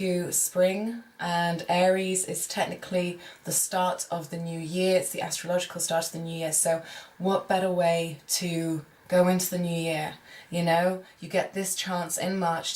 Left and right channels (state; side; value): identical; both; correlation 1.00